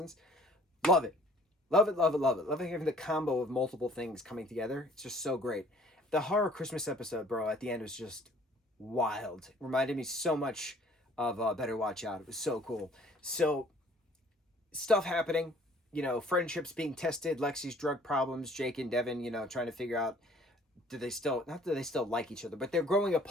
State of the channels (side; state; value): both; normal; correlation 0.54